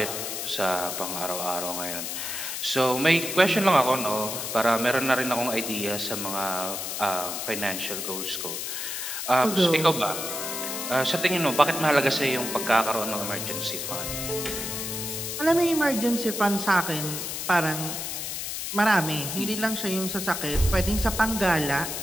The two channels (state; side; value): noise; left; hiss, 4 dB below the sound